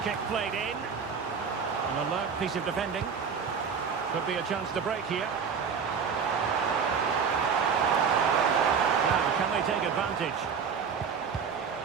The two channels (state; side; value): quieter; left; 6.3 dB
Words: kick played in. An alert piece of defending. Could be a chance to break here. Now, can they take advantage?